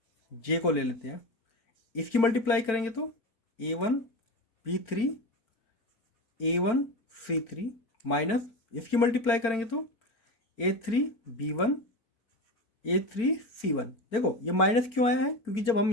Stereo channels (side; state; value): right; late; 4.4 ms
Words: j को ले लेते हैं, इसकी मल्टीप्लाई करेंगे तो a1 b3 a1 c3 minus इसकी मल्टीप्लाई करेंगे तो a3 b1 a3 c1। देखो ये माइनस क्यों आया है, क्योंकि जब